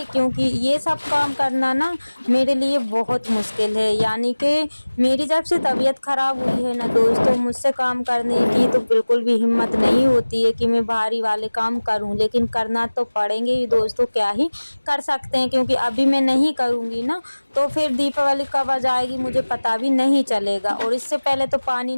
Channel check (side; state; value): both; inverted; correlation -1.00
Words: क्योंकि ये सब काम करना ना मेरे लिए बहुत मुश्किल है। यानी कि मेरी जब से तबीयत ख़राब हुई है ना दोस्तों, मुझसे काम करने की तो बिल्कुल भी हिम्मत नहीं होती है कि मैं भारी वाले काम करूं, लेकिन करना तो पड़ेंगे ही दोस्तों, क्या ही कर सकते हैं। क्योंकि अभी मैं नहीं करूंगी ना तो फिर दीपावली कब आ जाएगी मुझे पता भी नहीं चलेगा। और इससे पहले तो पानी